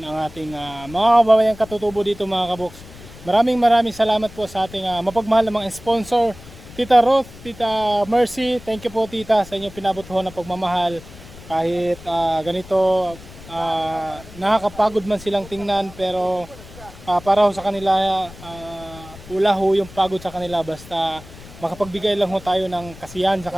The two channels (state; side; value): noise; left; rumble, 18 dB below the sound